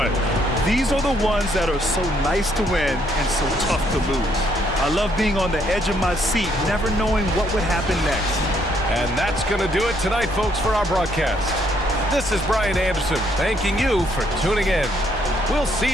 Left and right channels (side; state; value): left; noise; rumble, 12 dB below the sound